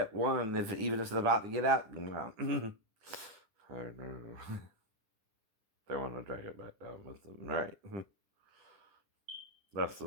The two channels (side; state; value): left; late; 10 ms